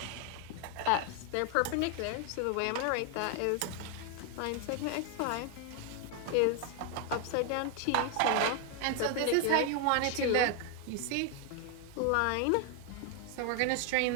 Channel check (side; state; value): both; different; correlation 0.01